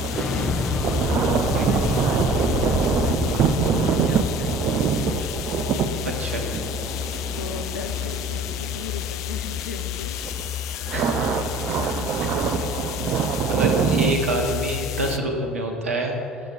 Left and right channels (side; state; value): both; normal; correlation 0.45